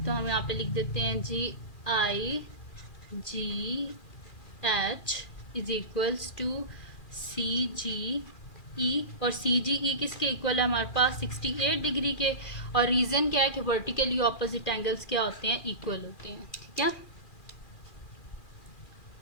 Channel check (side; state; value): right; late; 2.4 ms